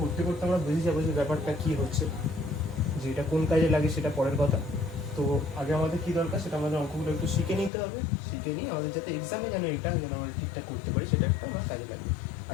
করতে করতে আমরা বুঝে যাবো যে ব্যাপারটা কী হচ্ছে, যে এটা কোন কাজে লাগে সেটা পরের কথা। তো আগে আমাদের কী দরকার, সেটা আমাদের অঙ্কগুলো একটু শিখে নিতে হবে। শিখে নিয়ে আমাদের যাতে এক্সামে যেন আমরা ঠিকঠাক করতে পারি, সেটা একটা আমার কাজে লাগবে।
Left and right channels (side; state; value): right; drops out; at 7.7 s